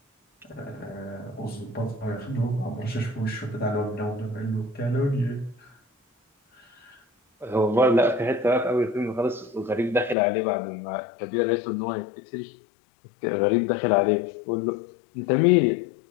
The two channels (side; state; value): right; drops out; at 10.2 s